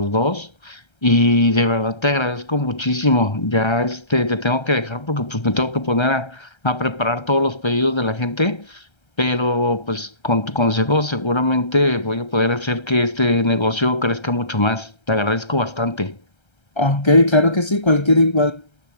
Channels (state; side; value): late; right; 1.3 ms